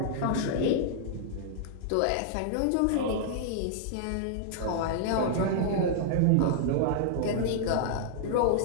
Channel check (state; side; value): different; both; correlation -0.01